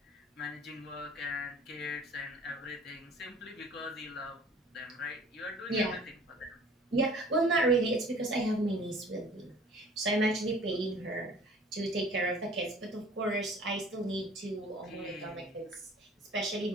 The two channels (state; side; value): normal; both; correlation 0.49